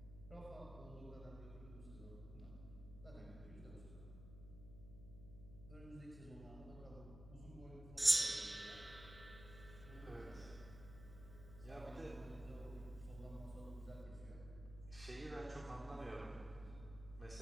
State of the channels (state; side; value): noise; left; hum, 13 dB below the sound